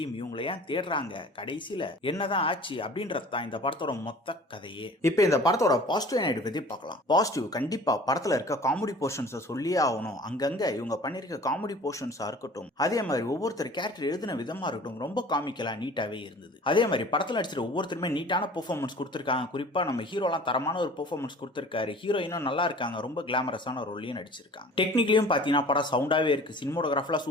இவங்களை ஏன் தேடுறாங்க, கடைசியில என்னதான் ஆச்சு அப்படின்றது தான் இந்த படத்தோட மொத்த கதையே. இப்போ இந்த படத்தோட பாசிட்டிவ் நைட் பத்தி பார்க்கலாம். பாசிட்டிவ் கண்டிப்பா படத்துல இருக்க காமெடி போர்ஷன்ஸ் சொல்லியே ஆகணும். அங்கங்க இவங்க பண்ணிருக்க காமெடி போர்ஷன்ஸா இருக்கட்டும், அதே மாதிரி ஒவ்வொருத்தர் கேரக்டர் எழுதின விதமா இருக்கட்டும், ரொம்ப காமிக்கலா நீட்டாவே இருந்தது. அதே மாதிரி படத்துல நடிச்சிருக்க ஒவ்வொருத்தருமே நீட்டான பெர்ஃபார்மன்ஸ் கொடுத்திருக்காங்க. குறிப்பா நம்ம ஹீரோலாம் தரமான ஒரு பெர்ஃபார்மன்ஸ் கொடுத்திருக்காரு. ஹீரோயினும் நல்லா இருக்காங்க, ரொம்ப கிளாமரஸான ரோல்லையும் நடிச்சிருக்காங்க. டெக்னிக்கலியும் பாத்தீங்கன்னா படம் சவுண்டாவே இருக்கு. சினிமோட்டோகிராஃபில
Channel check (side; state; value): both; normal; correlation 0.45